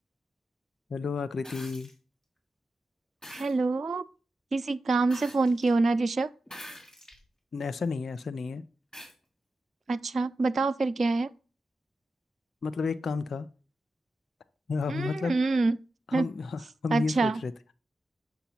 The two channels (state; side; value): normal; both; correlation 0.90